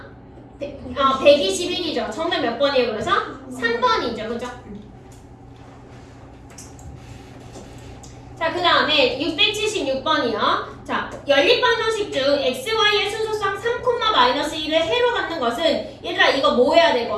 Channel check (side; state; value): both; identical; correlation 1.00